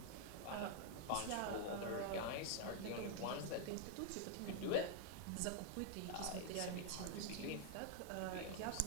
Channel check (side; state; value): both; different; correlation 0.00